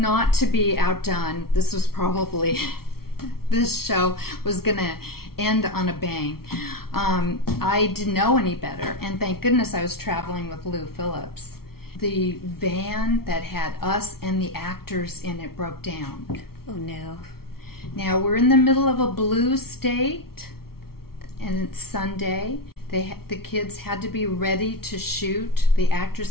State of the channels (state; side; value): late; right; 0.94 ms